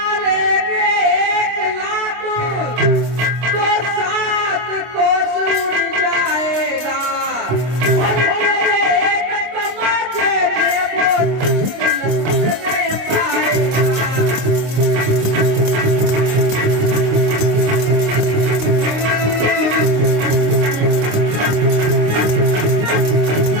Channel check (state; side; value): late; left; 26 ms